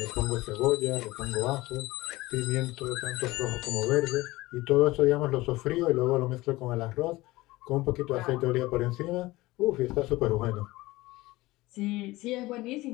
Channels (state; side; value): quieter; right; 19.5 dB